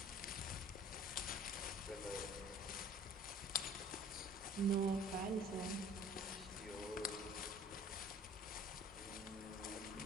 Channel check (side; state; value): both; normal; correlation 0.49